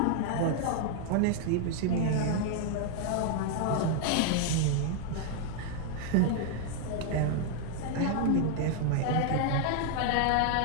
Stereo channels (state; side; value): different; both; correlation 0.00